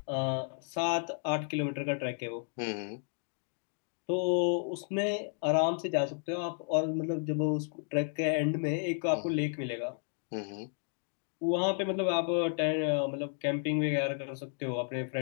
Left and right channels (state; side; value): silent; right; 56 dB below the other